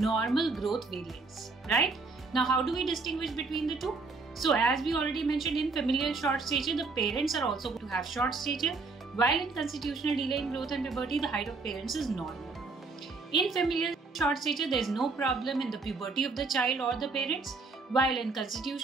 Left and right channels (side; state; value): left; quieter; 3.9 dB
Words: growth variants, right? Now, how do we distinguish between the two? So as we already mentioned, in familial short stature, the parents are also going to have short stature, while in constitutional delay in growth and puberty, the height of parents is normal. In familial short stature, there is no problem in the puberty of the child or the parents, while in